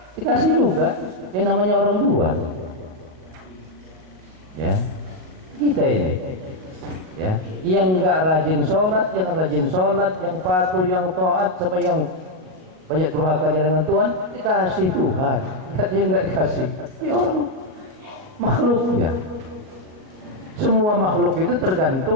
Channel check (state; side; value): late; left; 38 ms